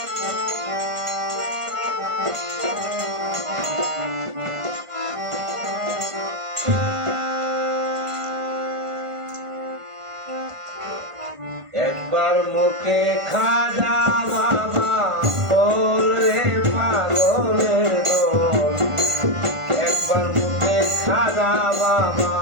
একবার মুখে খাজা বাবা বল রে পাগলের দল, একবার মুখে খাজা বাবা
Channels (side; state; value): left; late; 1.5 ms